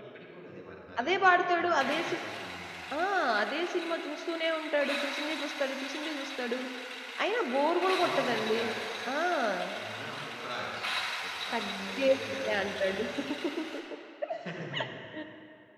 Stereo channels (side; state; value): both; identical; correlation 1.00